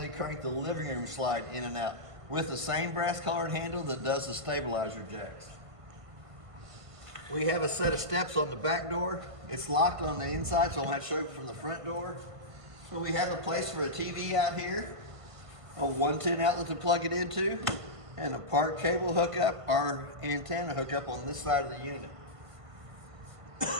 crank the living room slide in and out with the same brass colored handle that does the stabilizer jacks. We have a set of steps on the back door. It's locked on the inside, so I'll have to show you from the front door. So we have a place for a TV out here, a 110 outlet to plug it into, and a part cable hookup or antenna hookup on this side of the unit.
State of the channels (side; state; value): left; late; 1.5 ms